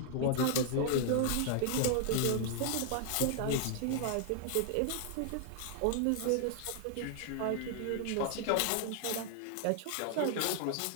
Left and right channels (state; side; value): different; both; correlation 0.00